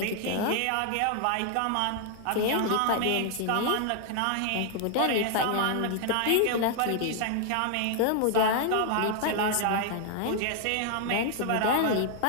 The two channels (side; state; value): both; different; correlation -0.01